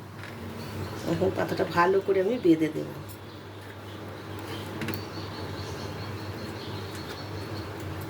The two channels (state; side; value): identical; both; correlation 1.00